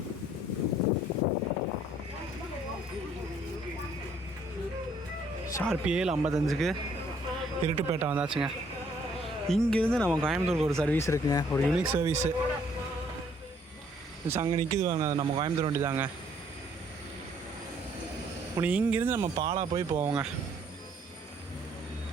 ஷார்ப் 7:55 இருட்டுப்பேட்டை வந்தாச்சுங்க. இங்கேருந்து நம்ம கோயம்புத்தூருக்கு ஒரு சர்வீஸ் இருக்குங்க, ஒரு யூனிக் சர்வீஸு. அங்கே நிற்கிது வாங்க, அது நம்ம கோயம்புத்தூர் வண்டி தாங்க. உனக்கு இங்கேருந்து நம்ம பாலா போய் போவோங்க.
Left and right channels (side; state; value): both; normal; correlation 0.64